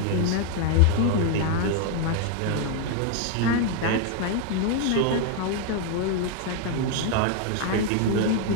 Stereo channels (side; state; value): both; different; correlation 0.00